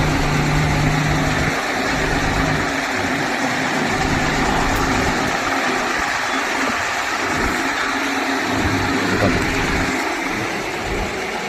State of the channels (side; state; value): both; identical; correlation 1.00